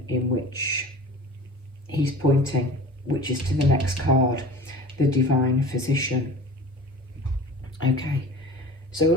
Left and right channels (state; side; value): normal; both; correlation 0.39